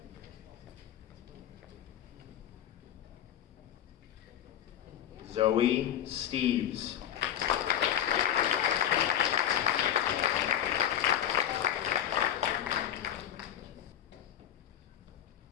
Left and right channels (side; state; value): right; quieter; 10.5 dB